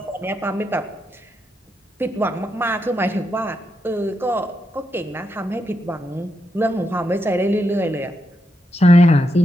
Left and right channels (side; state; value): both; normal; correlation 0.83